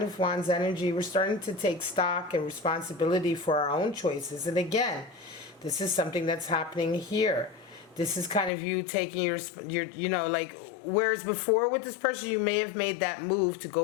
of Wands energy, we're starting to take stock and responsibility for our own choices. And again, this is something that's happening here. This is kind of you taking your you know, like, whereas before with this person, you may have made that move to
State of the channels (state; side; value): drops out; right; at 8.5 s